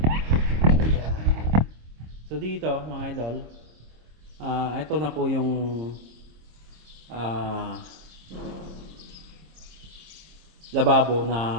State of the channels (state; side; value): late; left; 26 ms